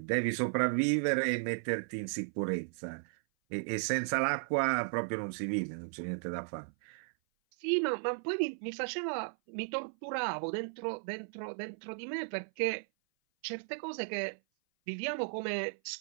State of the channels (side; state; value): left; silent; 54 dB below the other